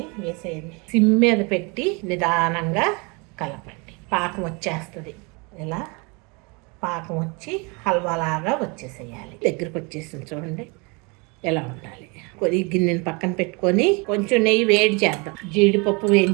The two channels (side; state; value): left; quieter; 29.9 dB